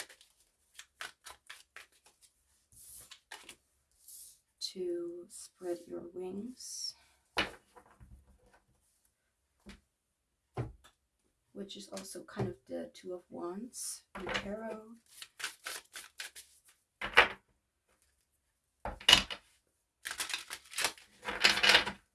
to spread your wings, which is also kind of the Two of Wands in tarot.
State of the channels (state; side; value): identical; both; correlation 1.00